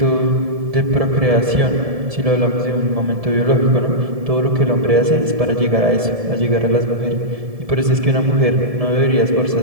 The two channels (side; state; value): left; late; 1.7 ms